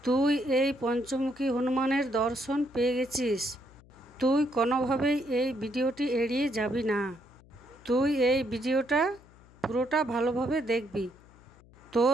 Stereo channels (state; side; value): noise; left; hum, 25 dB below the sound